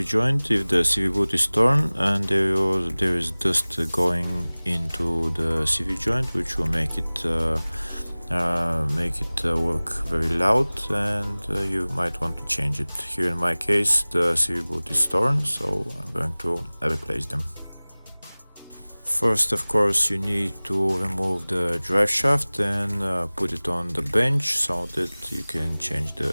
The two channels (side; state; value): both; inverted; correlation -1.00